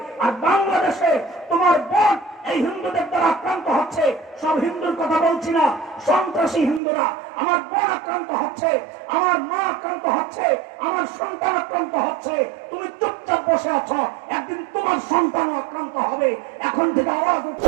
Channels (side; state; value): left; drops out; at 6.8 s